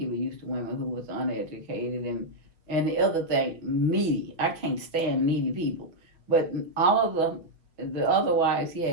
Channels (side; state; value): left; late; 5.6 ms